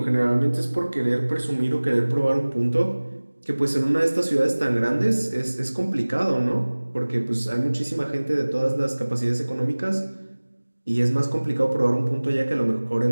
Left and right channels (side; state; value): both; inverted; correlation -1.00